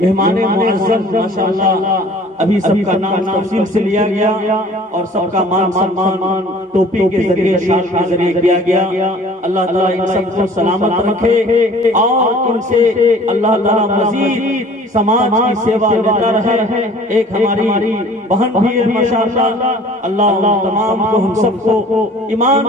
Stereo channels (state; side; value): normal; both; correlation 0.49